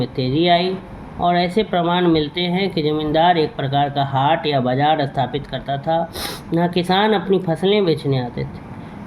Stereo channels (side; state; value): both; identical; correlation 1.00